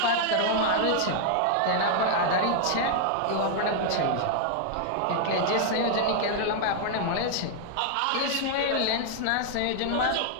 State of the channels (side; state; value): both; different; correlation -0.01